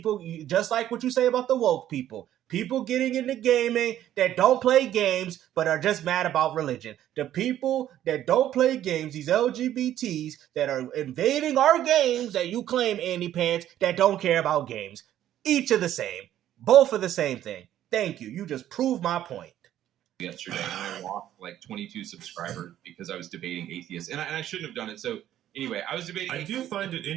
just like what you say about the woke people. People getting into gaming that don't play games but are just mad about religion. The people that don't play games, these LGBTs that are invading our games that you claim, Andy Pants, that don't care about games. Each are the same. Both are the same thing. Thank you. You just proved my point. Yesterday, and I lost like 22 subscribers because I was debating atheists. And I shouldn't have done it. So anyway, I was debating. I do find it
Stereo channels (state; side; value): quieter; left; 12.0 dB